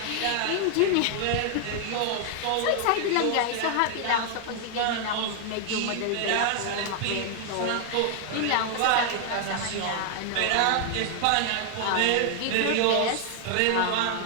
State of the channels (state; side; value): different; both; correlation 0.00